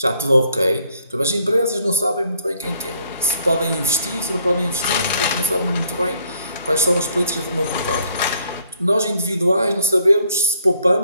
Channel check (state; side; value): inverted; both; correlation -0.68